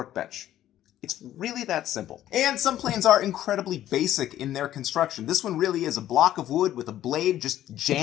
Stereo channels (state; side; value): quieter; right; 12.6 dB